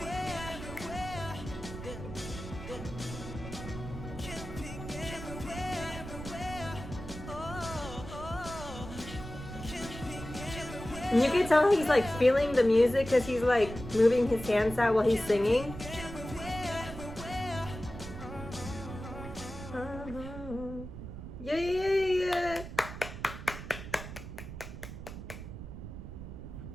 And you can tell he's like feeling the music because he's like moving his hands out while he's singing. Yeah, yeah, yeah.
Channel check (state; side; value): noise; right; rumble, 10 dB below the sound